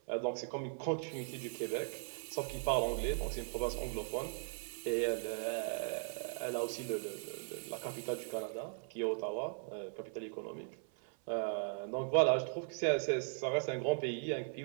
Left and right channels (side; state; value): left; silent; 52 dB below the other